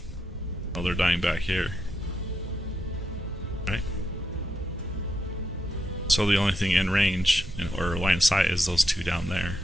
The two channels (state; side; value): normal; both; correlation 0.82